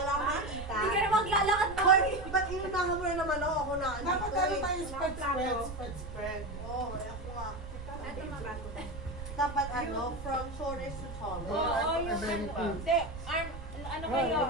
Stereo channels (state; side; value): noise; right; rumble, 10 dB below the sound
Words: akong makita. Hindi ka na maglalakad mo. Hoy, ba't inunahan mo na naman ako na? Dapat ano tayo spread. Oo, ako nga. Ito mabago. Dapat ano, from shoulders to Oo, shoulders. yung hindi, ano kayo,